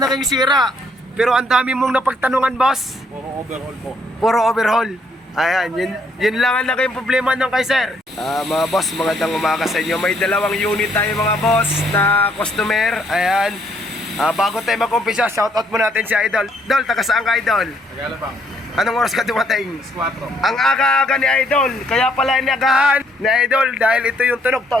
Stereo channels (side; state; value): both; normal; correlation 0.69